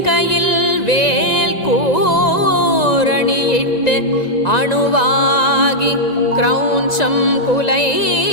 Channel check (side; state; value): right; late; 1.9 ms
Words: வேல் கூரணியிட்டு அணுவாகி கிரௌஞ்சம் குலைந்தரக்கர்